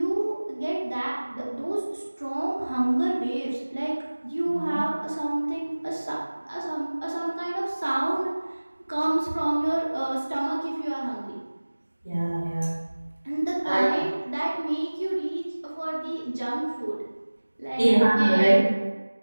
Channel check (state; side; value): inverted; both; correlation -1.00